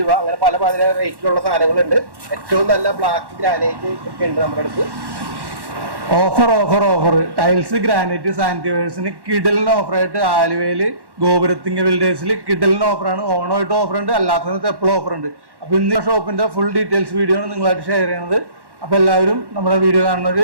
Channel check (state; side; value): late; left; 1.1 ms